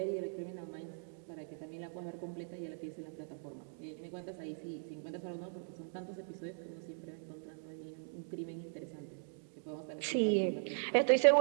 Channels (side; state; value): left; silent; digital silence